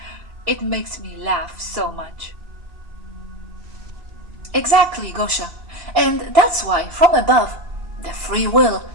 It makes me laugh so much. Exactly, Gosia. And that's why, from above, the free will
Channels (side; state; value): left; late; 2.7 ms